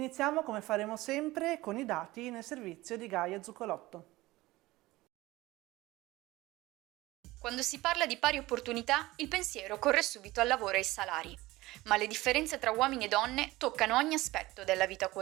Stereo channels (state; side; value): quieter; left; 18.9 dB